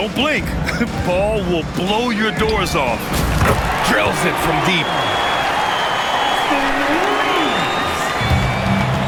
blink. Ball will blow your doors off. Drills it from deep.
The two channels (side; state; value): both; identical; correlation 1.00